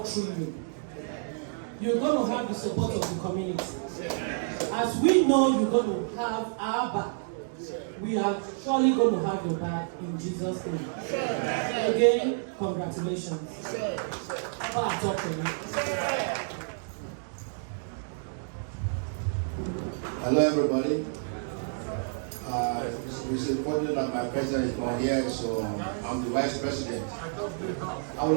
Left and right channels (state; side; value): silent; left; digital silence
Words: through you. You're going to have the support of the community. As we know you're going to have our back, we are surely going to have your back in Jesus' name. Again, congratulations. Hello, everybody. It's important that my president is not here, so I'm the vice president. I